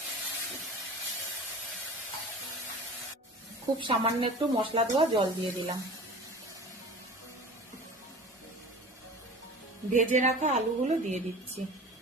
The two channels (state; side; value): normal; both; correlation 0.38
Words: খুব সামান্য একটু মশলা ধোয়া জল দিয়ে দিলাম। ভেজে রাখা আলুগুলো দিয়ে দিচ্ছি।